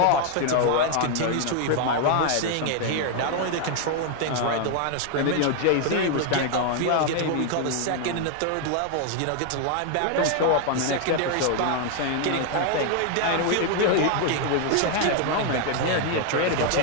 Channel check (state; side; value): different; both; correlation 0.00